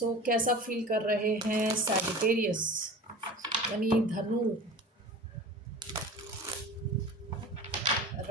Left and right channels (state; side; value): normal; both; correlation 0.37